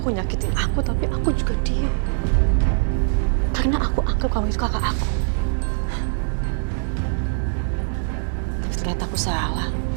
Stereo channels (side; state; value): left; silent; 64 dB below the other